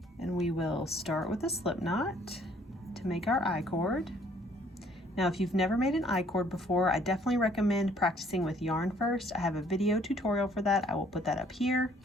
And we will start with a slip knot to make our I-cord. Now, if you've never made an I-cord before, I definitely recommend practicing with yarn first. I have a video tutorial for that. I will put that up here.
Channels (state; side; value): normal; both; correlation 0.61